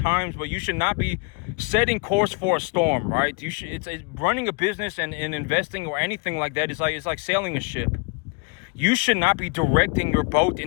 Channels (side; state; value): right; quieter; 31.1 dB